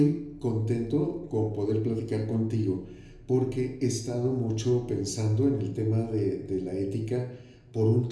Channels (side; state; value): both; identical; correlation 1.00